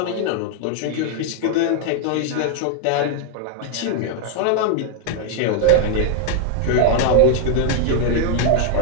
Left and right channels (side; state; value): both; different; correlation 0.00